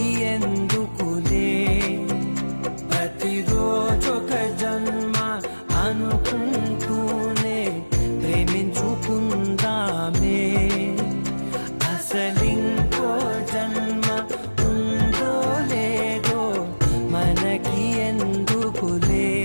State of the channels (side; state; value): both; inverted; correlation -1.00